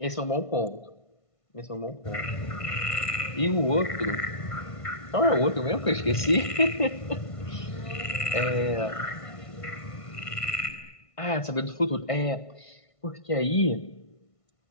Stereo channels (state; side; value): late; right; 1.5 ms